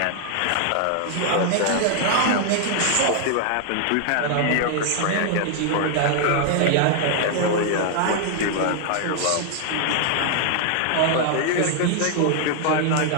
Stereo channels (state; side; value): different; both; correlation 0.00